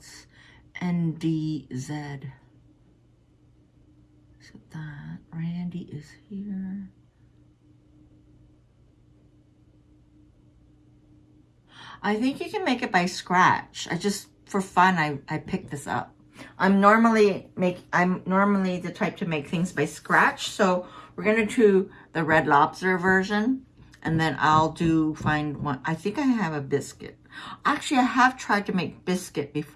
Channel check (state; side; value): identical; both; correlation 1.00